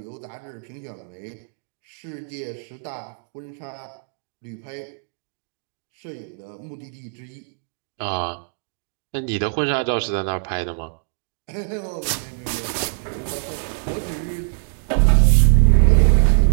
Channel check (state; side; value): silent; left; digital silence